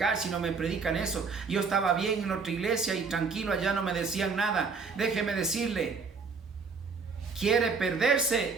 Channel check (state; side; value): quieter; left; 4.9 dB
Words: si no me predican eso? Yo estaba bien en otra iglesia y tranquilo, allá no me decían nada. Déjeme decirle, ¿quiere